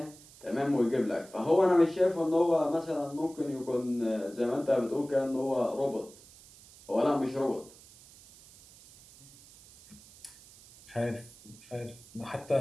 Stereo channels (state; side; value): noise; right; hiss, 22 dB below the sound